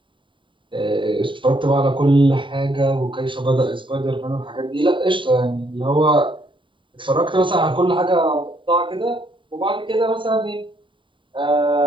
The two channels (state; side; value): late; left; 0.24 ms